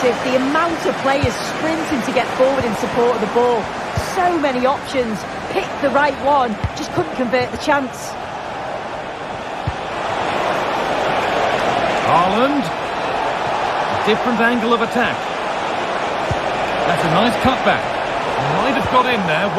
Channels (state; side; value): identical; both; correlation 1.00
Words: The amount of players sprinting to get forward in support of the ball. So many options. Picked the right one, just couldn't convert the chance. Haaland. A different angle of attack. That's a nice cutback. Might have got in there,